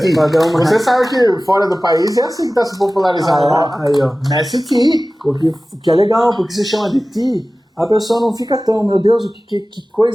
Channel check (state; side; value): normal; both; correlation 0.97